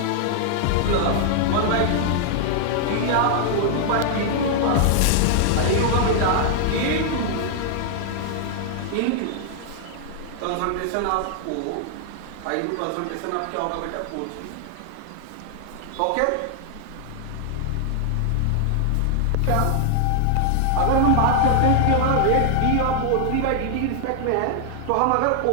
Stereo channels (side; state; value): both; different; correlation 0.00